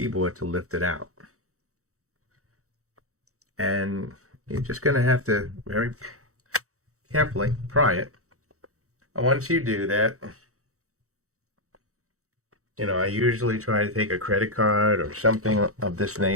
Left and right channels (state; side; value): late; left; 0.65 ms